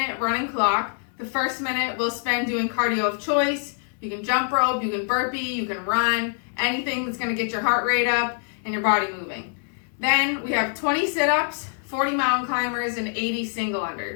running clock. The first minute we'll spend doing cardio of choice. You can jump rope, you can burpee, you can run, anything that's going to get your heart rate up and your body moving. Then we have 20 sit-ups, 40 mountain climbers, and 80 single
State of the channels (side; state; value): right; silent; 57 dB below the other